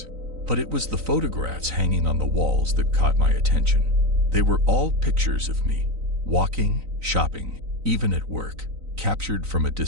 But it was the photographs hanging on the walls that caught my attention. They were all pictures of me, walking, shopping, even at work, captured from a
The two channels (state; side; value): late; left; 3.9 ms